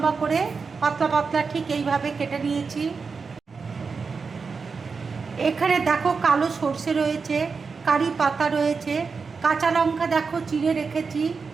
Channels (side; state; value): left; quieter; 5.0 dB